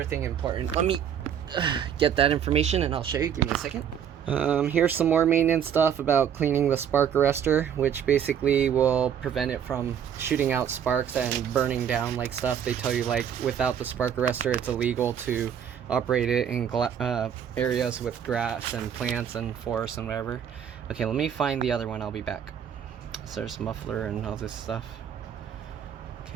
thing important. Let me get that information and I'll show you. Give me a second. Here's some more maintenance stuff about cleaning the spark arrestor, which basically will prevent it from shooting out sparks and burning down like stuff. They tell you like without the spark arrestor it's illegal to operate it in areas with grass and plants and forests and whatever. Okay, let me find the other one. I'll be back. So there's muffler and all this stuff.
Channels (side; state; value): left; quieter; 8.6 dB